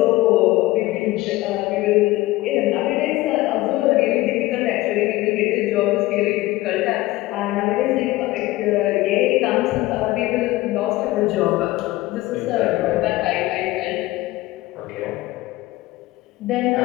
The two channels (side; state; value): right; quieter; 18.3 dB